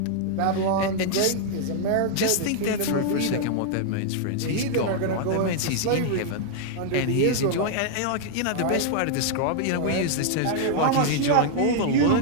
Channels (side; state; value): both; different; correlation -0.01